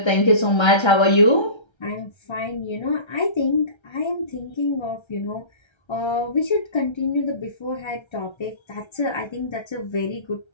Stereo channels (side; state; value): right; late; 1.3 ms